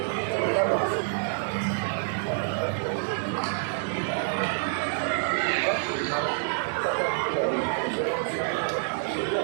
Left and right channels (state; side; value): silent; left; digital silence